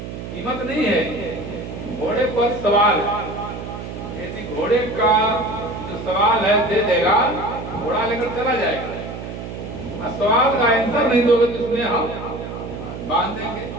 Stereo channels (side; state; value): right; noise; hum, 9 dB below the sound